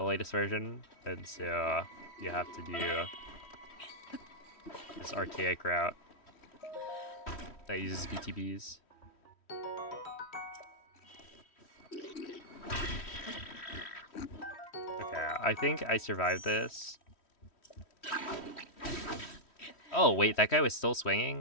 latest version, and so you have to do this archaic route that uses BTBs. Okay, I think I survived this. Oh, wait, that guy was still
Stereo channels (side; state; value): right; late; 3.1 ms